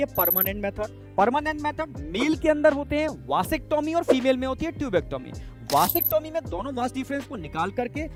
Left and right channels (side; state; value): both; identical; correlation 1.00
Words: permanent method. Permanent method male के अंदर होते हैं वासेक्टोमी और फीमेल में होती है ट्यूबेक्टोमी। वासेक्टोमी में दोनों वास डिफरेंस को निकाल करके